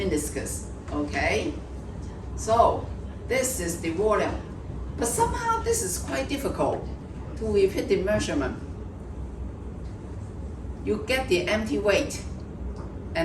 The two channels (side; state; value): both; identical; correlation 1.00